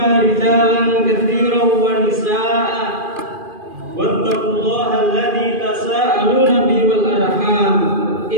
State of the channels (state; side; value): late; left; 2.4 ms